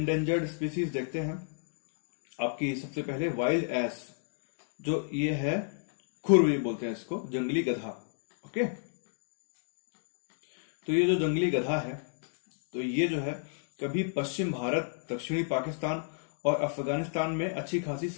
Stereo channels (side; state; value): right; silent; digital silence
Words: स्पीसीज देखते हैं। आपकी सबसे पहले वाइल्ड एस, जो ये है खुर बोलते हैं इसको, जंगली गधा। ओके, तो ये जो जंगली गधा है तो ये जो है कभी पश्चिम भारत, दक्षिणी पाकिस्तान और अफगानिस्तान में अच्छी खासी